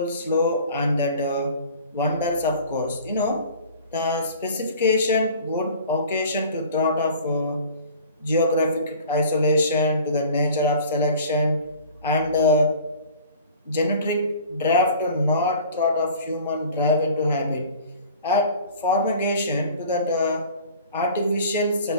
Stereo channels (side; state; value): both; inverted; correlation -0.46